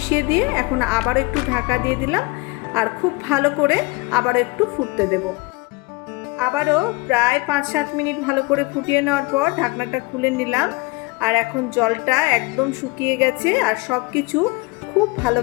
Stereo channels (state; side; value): quieter; right; 24.9 dB